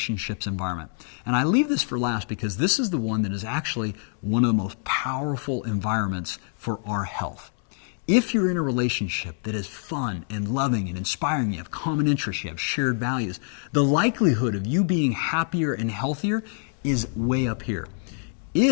environment. And I leave this for last because this is the one that is actually one of the most powerful environments for our health. If you're in a relationship that is fun and loving and inspiring, you have common interests, you have shared values, the likelihood of you being happier and healthier is way up here.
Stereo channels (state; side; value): silent; right; 58 dB below the other